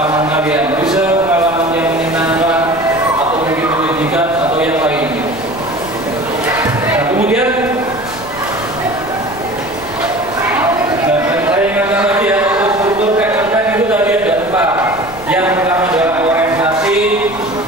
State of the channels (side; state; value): left; noise; rumble, 18 dB below the sound